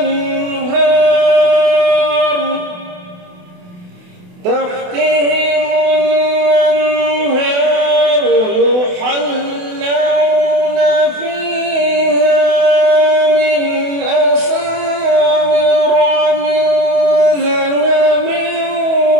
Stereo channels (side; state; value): left; late; 28 ms